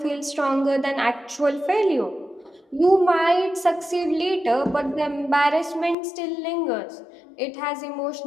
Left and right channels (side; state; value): right; drops out; at 6.0 s